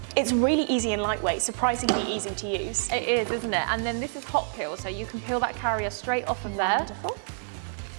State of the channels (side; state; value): left; silent; 58 dB below the other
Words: It's really easy and lightweight, surprisingly easy to use. It is, isn't it? And then this is hot peel, so you can peel that carrier straight off of there. Wonderful.